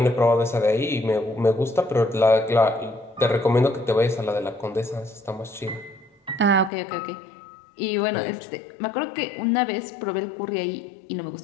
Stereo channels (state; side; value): drops out; right; at 6.7 s